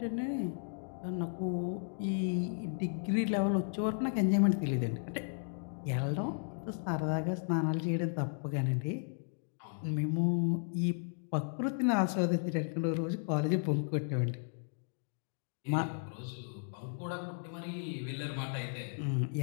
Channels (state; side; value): silent; right; digital silence